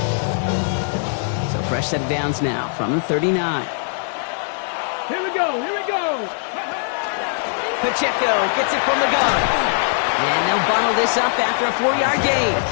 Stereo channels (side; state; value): right; silent; 65 dB below the other